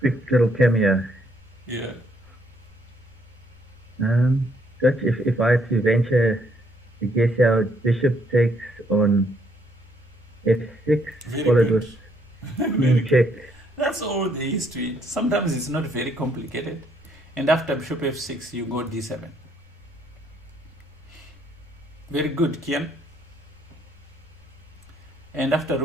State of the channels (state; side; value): normal; both; correlation 0.69